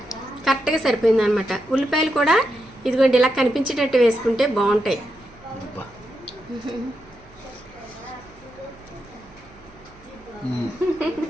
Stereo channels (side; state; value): right; noise; hum, 25 dB below the sound